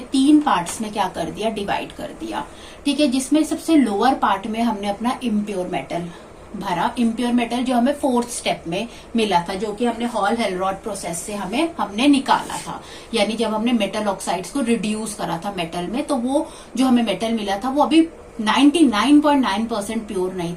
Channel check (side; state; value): both; identical; correlation 1.00